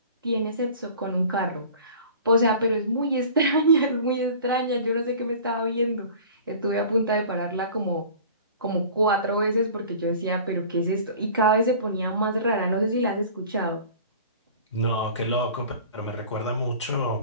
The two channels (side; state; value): both; inverted; correlation -0.43